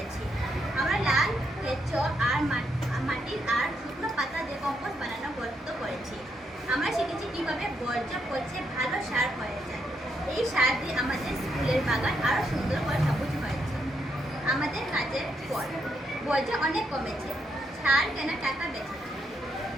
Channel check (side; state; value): both; normal; correlation 0.78